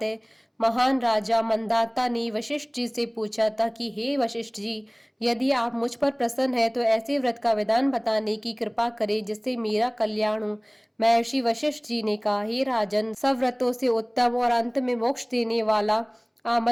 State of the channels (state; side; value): identical; both; correlation 1.00